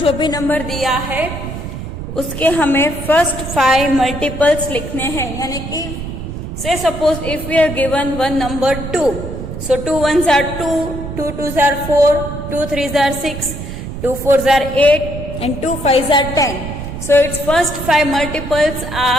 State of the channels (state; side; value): noise; right; rumble, 7 dB below the sound